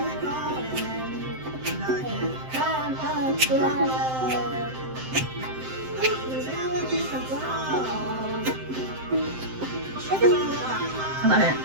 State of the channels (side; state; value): left; late; 7.7 ms